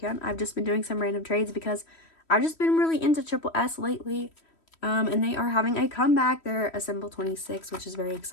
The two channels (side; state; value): right; late; 3.1 ms